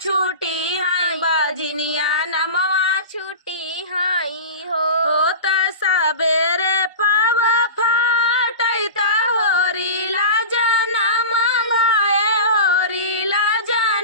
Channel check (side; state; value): both; inverted; correlation -0.31